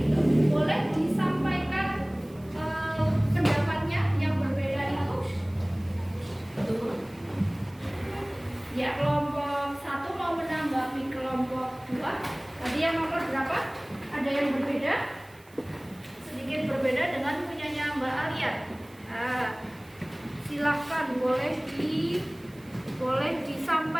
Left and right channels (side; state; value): right; noise; hiss, 28 dB below the sound